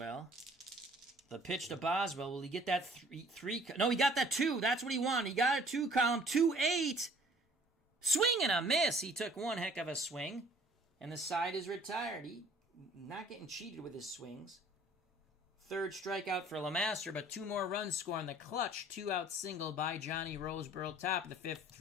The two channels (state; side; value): normal; both; correlation 0.54